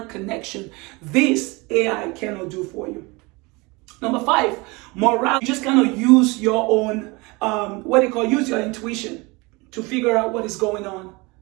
connection. This AI cannot do for you. Number 5, morale. You just cannot use your own, use your intuition to figure out what is going on.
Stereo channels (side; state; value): left; quieter; 25.5 dB